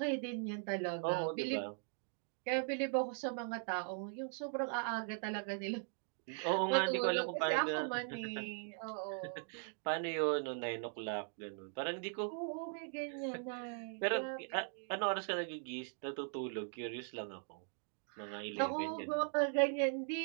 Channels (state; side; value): silent; left; 51 dB below the other